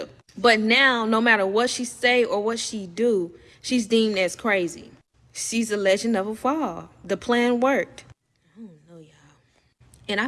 But now, no matter what she say or what she do, she's deemed as crazy. She's a legend of a fall. The plan worked. And I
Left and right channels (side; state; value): both; identical; correlation 1.00